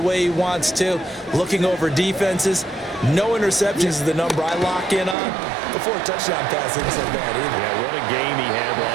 way he wants to, looking over defenses. No interceptions is the number I lock in on. Before a touchdown pass isn't so bad either. Yeah, what a game he had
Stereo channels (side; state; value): left; drops out; at 5.2 s